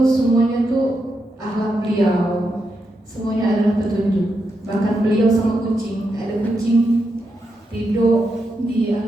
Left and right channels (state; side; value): normal; both; correlation 0.84